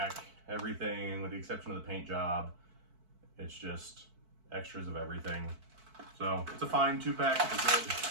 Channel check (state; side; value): late; left; 4.5 ms